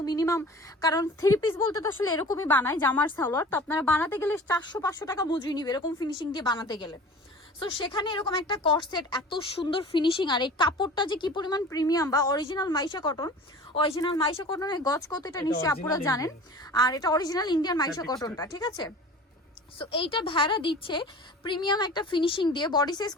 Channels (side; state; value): both; normal; correlation 0.41